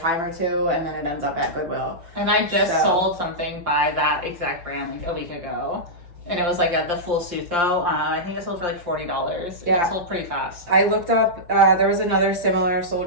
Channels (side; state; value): left; late; 5.7 ms